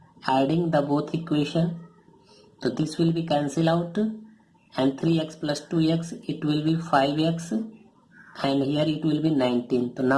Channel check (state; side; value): identical; both; correlation 1.00